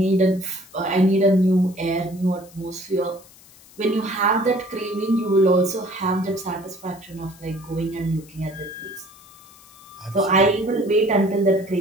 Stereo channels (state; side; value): noise; left; hiss, 24 dB below the sound